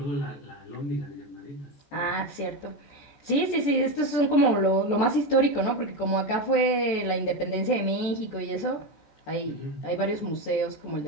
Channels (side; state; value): right; late; 14 ms